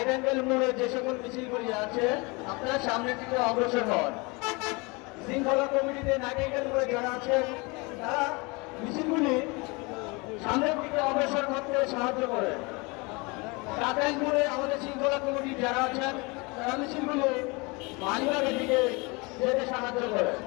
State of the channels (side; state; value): right; quieter; 27.5 dB